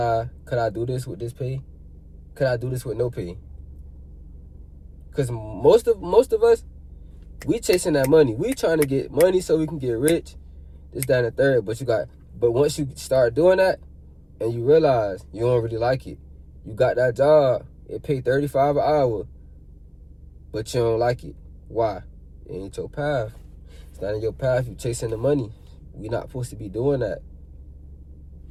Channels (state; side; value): identical; both; correlation 1.00